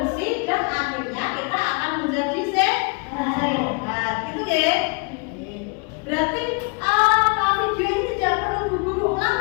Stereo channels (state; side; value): quieter; right; 33.3 dB